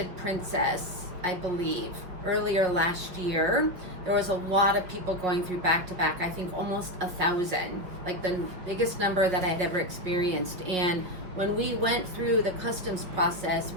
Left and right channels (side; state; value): left; late; 5.5 ms